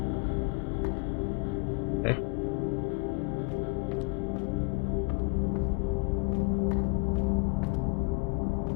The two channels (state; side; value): quieter; right; 32.7 dB